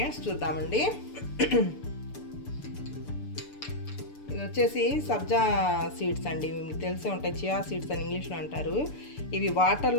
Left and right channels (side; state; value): right; late; 6.8 ms